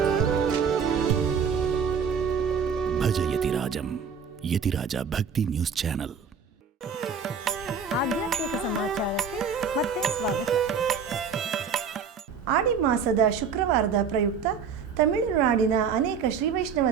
ಸಮಾಜಂ ಯತಿರಾಜ ಭಕ್ತಿ ನ್ಯೂಸ್ ಚಾನೆಲ್. ಆಧ್ಯಾತ್ಮಿಕ ಸಮಾಚಾರಕ್ಕೆ ಮತ್ತೆ ಸ್ವಾಗತ. ಆಡಿ ಮಾಸದ ಶುಕ್ರವಾರದ ಪ್ರಯುಕ್ತ ತಮಿಳುನಾಡಿನ ಅನೇಕ ಶ್ರೀ ವೈಷ್ಣವ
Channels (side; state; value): left; quieter; 6.2 dB